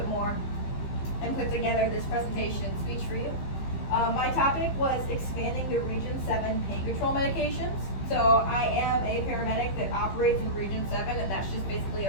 more, and put together this presentation and speech for you. My topic was expanding the Region 7 pain control medications. So I am a paramedic that operates in Region 7, and that's just basically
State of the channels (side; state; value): right; late; 15 ms